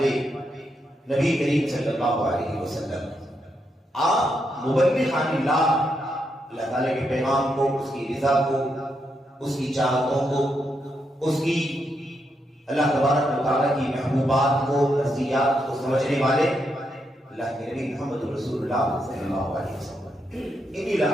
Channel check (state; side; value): normal; both; correlation 0.81